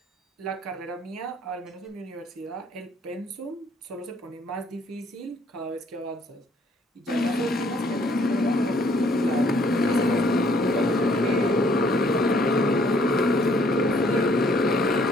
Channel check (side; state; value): both; normal; correlation 0.63